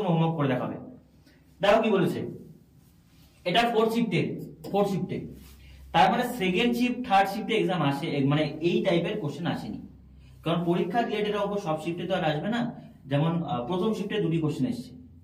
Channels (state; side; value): identical; both; correlation 1.00